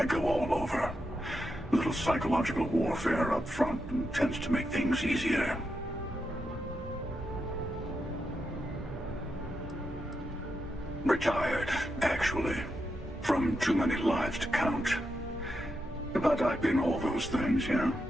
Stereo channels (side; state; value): both; normal; correlation 0.85